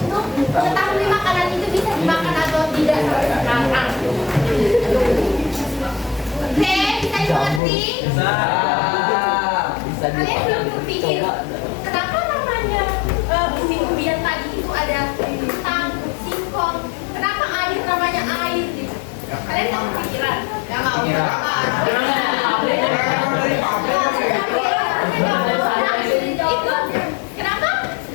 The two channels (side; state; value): right; drops out; at 7.6 s